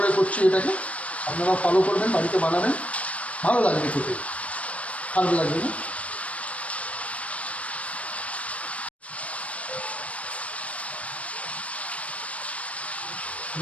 করছি। এটাকে আপনারা ফলো করবেন, বাড়িতে বানাবেন, ভালো লাগবে খেতে, খারাপ লাগবে না।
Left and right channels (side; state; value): right; late; 0.065 ms